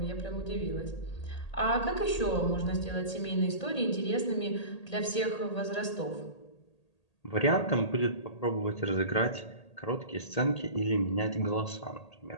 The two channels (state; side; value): late; right; 1.8 ms